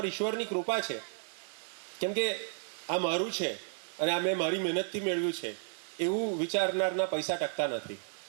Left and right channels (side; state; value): left; silent; digital silence